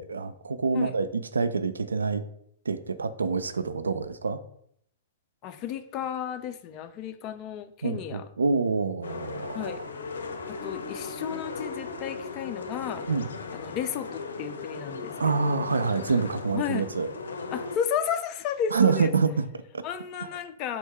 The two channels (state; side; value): inverted; both; correlation -0.56